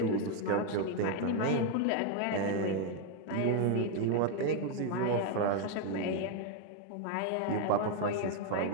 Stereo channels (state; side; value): different; both; correlation 0.00